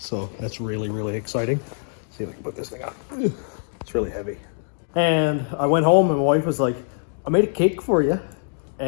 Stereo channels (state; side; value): silent; right; 57 dB below the other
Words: that's really, really exciting. See if I can put this thing on. It's really heavy. And I went home and my wife was like, I made a cake for you.